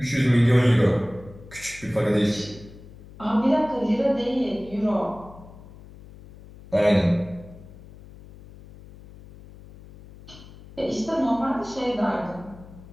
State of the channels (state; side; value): noise; left; hum, 19 dB below the sound